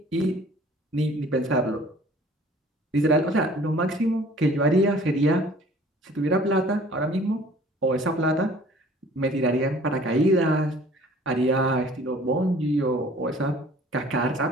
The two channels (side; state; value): both; normal; correlation 0.51